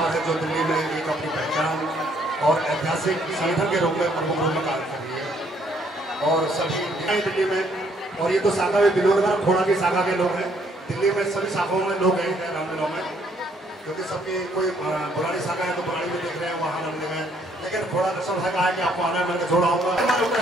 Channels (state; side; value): normal; both; correlation 0.67